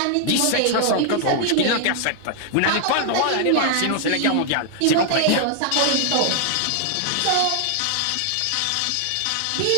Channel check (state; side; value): different; both; correlation 0.00